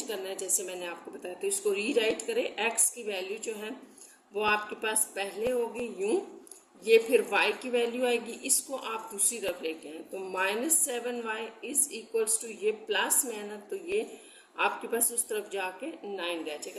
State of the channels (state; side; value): identical; both; correlation 1.00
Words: करना है जैसे मैंने आपको बताया। तो इसको रीराइट करें, x की वैल्यू जो है वो आपके पास पहले होगी यूं, ये फिर y की वैल्यू आएगी, इसको आप दूसरी तरफ लेके आए तो -7y इज इक्वल्स टू ये प्लस में है ना, तो ये आपके पास उस तरफ जाके 9 रह